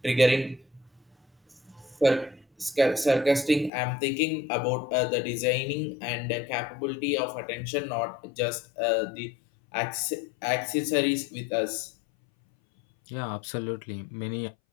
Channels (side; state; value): right; drops out; at 3.7 s